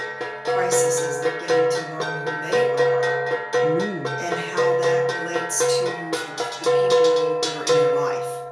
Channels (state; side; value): identical; both; correlation 1.00